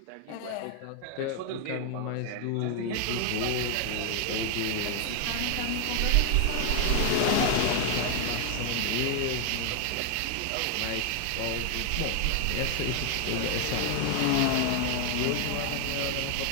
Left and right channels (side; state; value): both; different; correlation 0.00